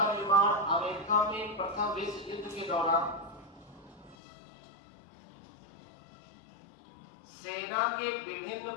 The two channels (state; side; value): drops out; right; at 4.2 s